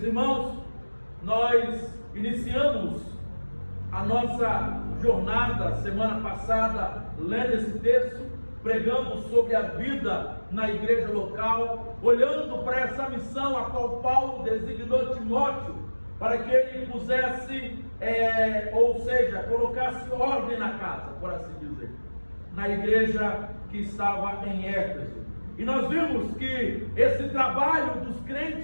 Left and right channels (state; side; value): inverted; both; correlation -1.00